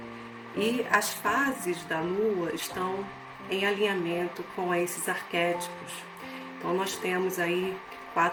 E as fases da Lua estão em alinhamento com esses arquétipos. Então nós temos aí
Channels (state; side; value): identical; both; correlation 1.00